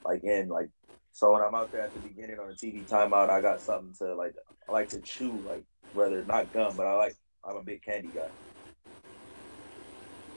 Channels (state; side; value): inverted; both; correlation -1.00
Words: like in, like, so when I'm out there at the beginning on the TV timeout, I got something to like, I like to chew, like, whether not gum, but I'm a big candy guy.